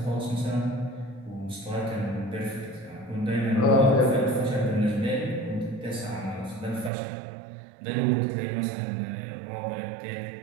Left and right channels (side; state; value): left; drops out; at 6.9 s